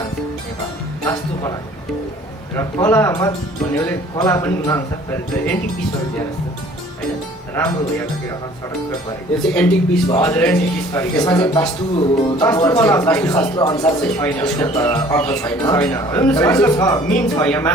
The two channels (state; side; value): normal; both; correlation 0.53